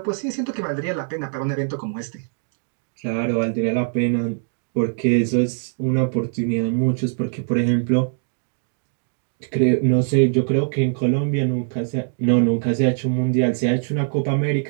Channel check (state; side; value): silent; left; digital silence